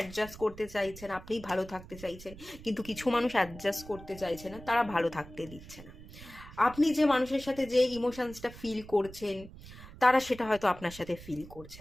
করতে চাইছেন, আপনি ভালো থাকতে চাইছেন, কিন্তু কিছু মানুষ অ্যাডজাস্ট করতে চাইছে না, তারা ভালো থাকতে দিচ্ছে না। আপনি যে মানুষের সাথে যে ইমোশনসটা ফিল করছেন, তারা সেটা হয়তো আপনার সাথে ফিল করছে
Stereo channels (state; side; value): noise; right; rumble, 16 dB below the sound